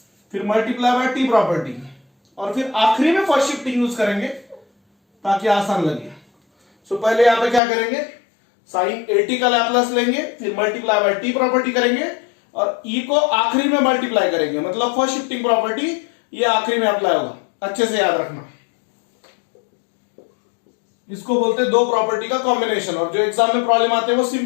फिर मल्टीप्लाई बाय टी प्रॉपर्टी, और फिर आखिरी में फर्स्ट शिफ्टिंग यूज करेंगे ताकि आसान लगे। सो पहले यहां पे क्या करेंगे, साइन 80 का लैप्लास लेंगे, फिर मल्टीप्लाई बाय टी प्रॉपर्टी करेंगे और ई को आखिरी में मल्टीप्लाई करेंगे, मतलब फर्स्ट शिफ्टिंग प्रॉपर्टी ये आखिरी में अप्लाई होगा। अच्छे से याद रखना, इसको बोलते हैं दो प्रॉपर्टी का कॉम्बिनेशन। और जो एग्जाम में प्रॉब्लम आते हैं वो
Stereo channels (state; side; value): drops out; right; at 7.6 s